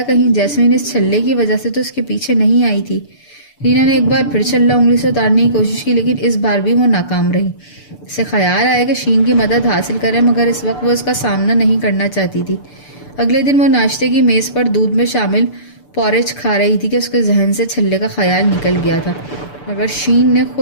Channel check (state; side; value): late; right; 6.8 ms